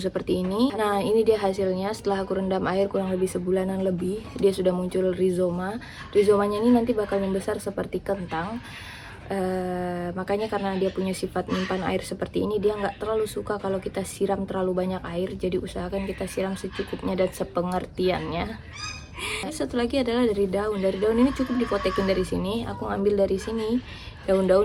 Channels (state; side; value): identical; both; correlation 1.00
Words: seperti ini. Nah, ini dia hasilnya setelah aku rendam air kurang lebih sebulanan lebih. Dia sudah muncul rizoma. Rizomanya ini nanti bakal membesar seperti kentang. Makanya karena dia punya sifat menyimpan air seperti ini, dia nggak terlalu suka kalau kita siram terlalu banyak air. Jadi usahakan kita siram secukupnya dan sepengertiannya. Satu lagi adalah dari daun. Dari daun ini cukup dipotekin dari sini. Aku ngambil dari sini